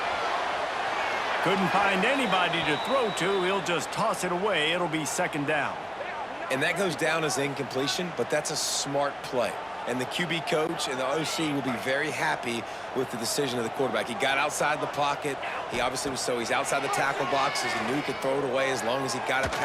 Couldn't find anybody to throw to. He'll just toss it away. It'll be 2nd down. And that goes down as incompletion, but that's a smart play. And the QB coach and the OC will be very happy with the decision of the quarterback. He got outside the pocket. He obviously was he's outside the tackle boxes. He knew he could throw it away as long as he got it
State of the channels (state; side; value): identical; both; correlation 1.00